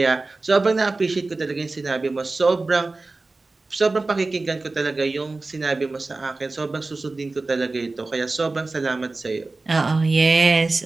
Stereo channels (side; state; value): left; quieter; 3.4 dB